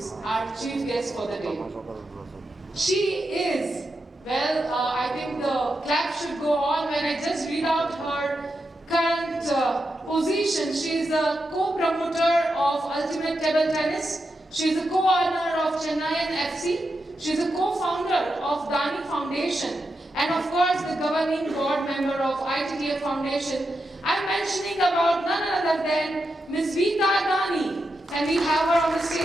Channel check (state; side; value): normal; both; correlation 0.87